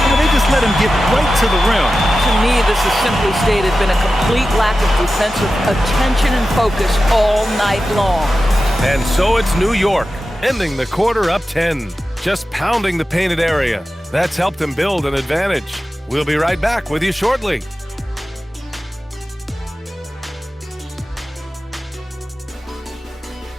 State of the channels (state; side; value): normal; both; correlation 0.93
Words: They just let him get right to the rim. To me, this has simply stated been a complete lack of defensive attention and focus all night long. And so it's New York, ending the quarter up 10. Just pounding the painted area. That's helped them build an advantage. We'll be right back with you shortly.